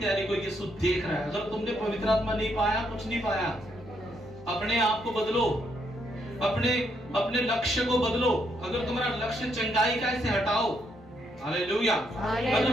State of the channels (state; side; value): normal; both; correlation 0.75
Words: को यीशु देख रहा है। अगर तुमने पवित्र आत्मा नहीं पाया, कुछ नहीं पाया, अपने आप को बदलो, अपने लक्ष्य को बदलो। अगर तुम्हारा लक्ष्य चंगाई का, इसे हटाओ। हालेलुया।